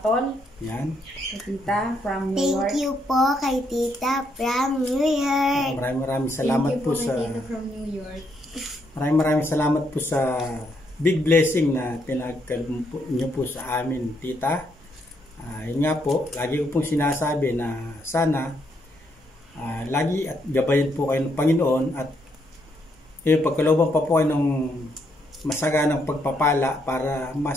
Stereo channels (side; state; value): both; normal; correlation 0.75